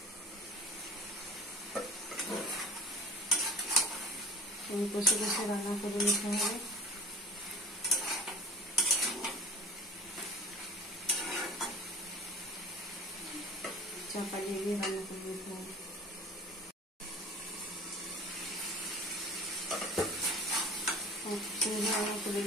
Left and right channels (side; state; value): both; normal; correlation 0.41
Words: কষে কষে রান্না করে নিতে হবে। চাপা দিয়ে রান্না করে নিতে হবে। রান্না করে